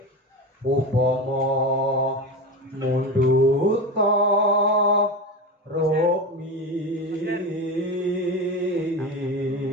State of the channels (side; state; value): both; normal; correlation 0.23